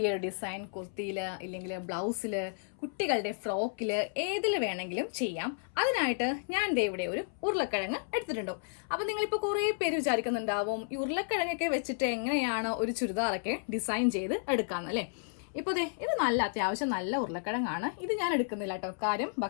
ഒരു ഡിസൈൻ കുർത്തിയിൽ ഇല്ലെങ്കിൽ ബ്ലൗസിൽ കുട്ടികളുടെ ഫ്രോക്കിൽ ഏതിൽ വേണമെങ്കിലും ചെയ്യാം. അതിനായിട്ട് ഞാൻ ദേ ഇവിടെ ഒരു ഉരുളക്കിഴങ്ങ് എടുത്തിട്ടുണ്ടോ. അപ്പോൾ നിങ്ങളിപ്പോൾ കുറേ പേര് വിചാരിക്കുന്നുണ്ടാവും ഈ ഉരുളക്കിഴങ്ങൊക്കെ വെച്ചിട്ട് എങ്ങനെയാണ് ഒരു ചുരിദാറൊക്കെ ഡിസൈൻ ചെയ്ത് എടുക്കാമെന്നല്ലേ. ഇപ്പോൾ ദേ ഇത് നല്ല അത്യാവശ്യം നല്ല ഉരുളക്കിഴങ്ങാണ്. ഇത് ഞാൻ എടുക്കുന്നില്ല കേട്ടോ. കാര്യം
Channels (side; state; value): right; silent; 56 dB below the other